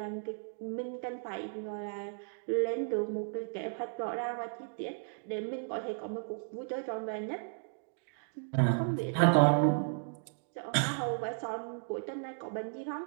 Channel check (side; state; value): left; silent; digital silence